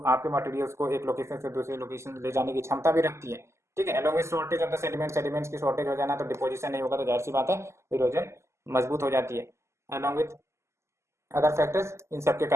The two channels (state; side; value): late; left; 0.13 ms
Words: आपके मटेरियल्स को एक लोकेशन से दूसरे लोकेशन ले जाने की क्षमता भी रखती है। ठीक है, along with shortage of the sediment, sediments की शॉर्टेज हो जाना तो डिपोजिशन नहीं होगा, तो जाहिर सी बात है इरोजन मजबूत हो जाती है। अलॉन्ग विद अदर फैक्टर्स, इन सब के